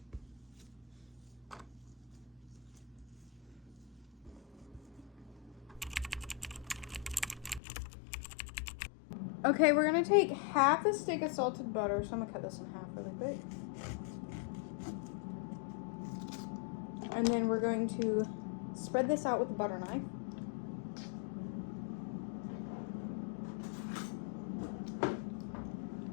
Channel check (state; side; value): drops out; right; at 7.6 s